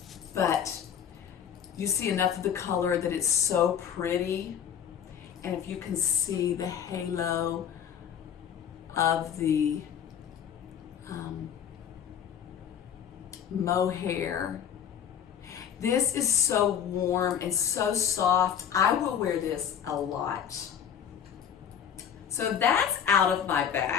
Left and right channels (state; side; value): quieter; right; 8.6 dB